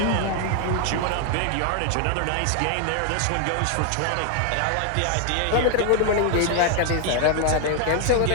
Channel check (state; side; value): different; both; correlation 0.00